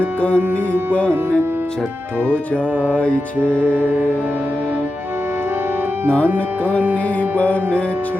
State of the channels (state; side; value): normal; both; correlation 0.91